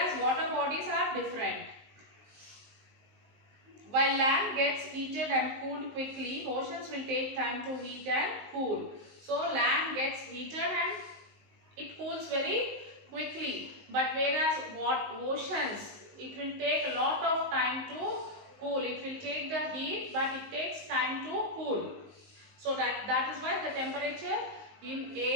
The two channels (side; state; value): left; late; 19 ms